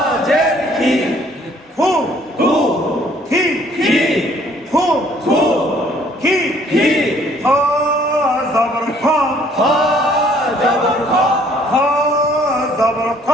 কি হু হু কি কি হু হু কি কি জবর খা হ জবর খ জবর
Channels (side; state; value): both; normal; correlation 0.60